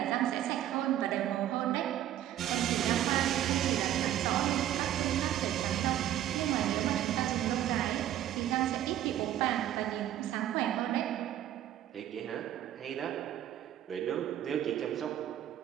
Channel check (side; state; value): left; quieter; 12.0 dB